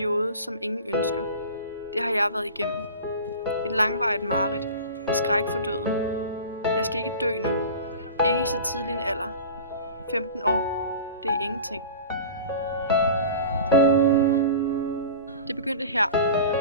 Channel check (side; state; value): both; inverted; correlation -0.37